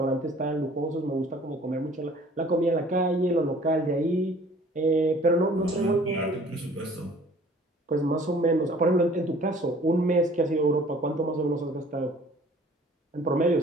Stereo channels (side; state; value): both; normal; correlation 0.52